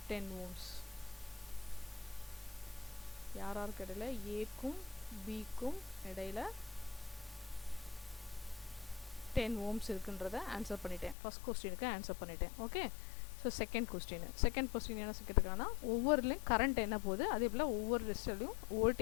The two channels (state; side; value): drops out; right; at 11.2 s